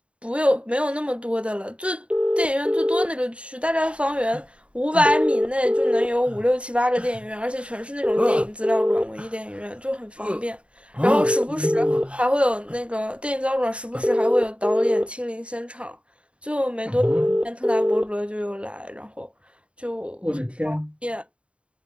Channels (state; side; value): late; left; 0.059 ms